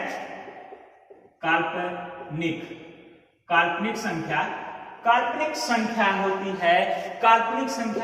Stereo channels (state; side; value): identical; both; correlation 1.00